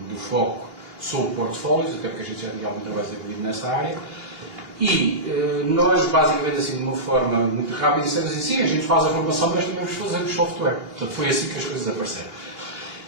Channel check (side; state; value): left; late; 2.8 ms